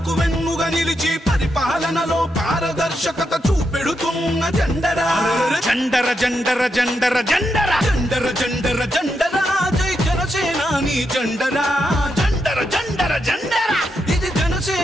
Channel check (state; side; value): normal; both; correlation 0.83